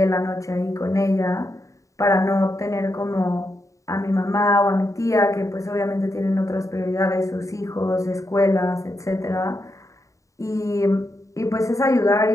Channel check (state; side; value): late; right; 0.16 ms